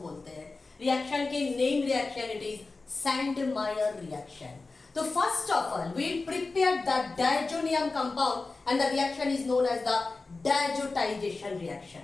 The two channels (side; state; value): right; quieter; 3.7 dB